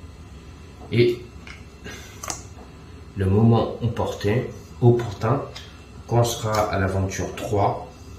et le moment opportun, quand on sera à l'aventure 3,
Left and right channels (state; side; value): identical; both; correlation 1.00